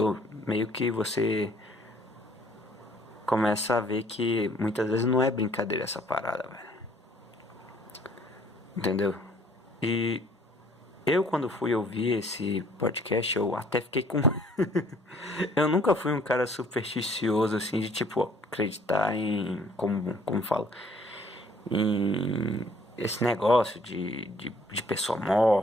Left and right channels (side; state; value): both; normal; correlation 0.59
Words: meio que você começa a ver que muitas vezes não é brincadeira essa parada, velho. Entendeu? E eu, quando fui ouvir esse podcast, eu até fiquei com. Eu nunca fui um cara supersticioso, assim, de tipo, acreditar em. Como falo? Em esse negócio de pessoa